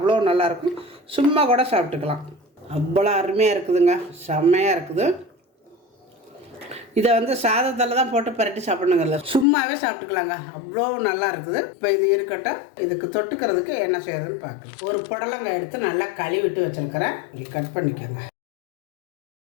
நல்லாயிருக்கும். சும்மா கூட சாப்பிட்டுக்கலாம், அவ்வளோ அருமையாக இருக்குதுங்க, செம்மையாக இருக்குது. இதை வந்து சாதத்தில் தான் போட்டு பரட்டி சாப்பிடணுங்கல்ல, சும்மாவே சாப்பிட்டுக்கலாங்க, அவ்வளோ நல்லா இருக்குது. இப்போ இது இருக்கட்டும். இதுக்கு தொட்டுக்கிறதுக்கு என்ன செய்யறதுன்னு பார்க்கலாம். ஒரு புடலங்காய் எடுத்து நல்லா கழுவிட்டு வச்சுருக்கிறேன். இப்படி கட் பண்ணிக்கோங்க.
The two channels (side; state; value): right; drops out; at 9.5 s